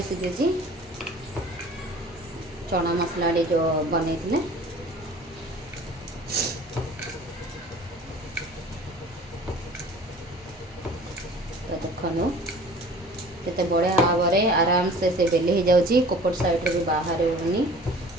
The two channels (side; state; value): both; normal; correlation 0.46